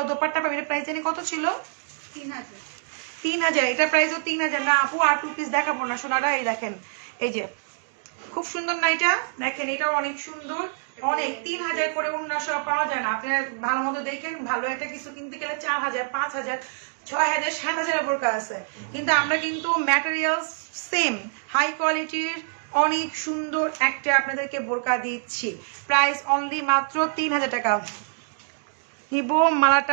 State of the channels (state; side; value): silent; left; digital silence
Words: দোপাট্টা পাবেন। প্রাইস জানি কত ছিল? 3000। এটা প্রাইসও 3000 না আপু, আর 2 পিস দেখাবো না সোনারা। এই দেখেন এই যে খুব সুন্দর না এটা, দেখেন এটাও অনেক সুন্দর, অনেক 3000 করে অন্য সব পাওয়া যায় না। আপনার ভালো মতো দেখেন, ভালো একটা কিছু কিনতে গেলে 4000, 5000, 6000, 7000 বোরকা আছে, কিন্তু আমরা কিন্তু ম্যাটেরিয়াল সেম হাই কোয়ালিটির অনেক সুন্দর একটা আপনাদেরকে বোরকা দিচ্ছি। প্রাইস অনলি মাত্র 3000 টাকা। নিব